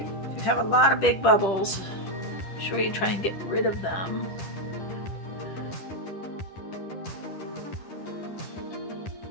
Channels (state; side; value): late; right; 10 ms